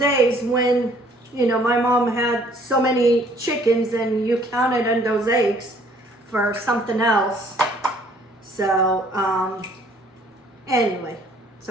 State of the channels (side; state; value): both; normal; correlation 0.59